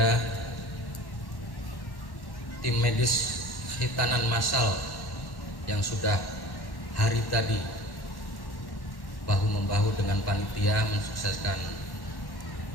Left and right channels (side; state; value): right; late; 1.1 ms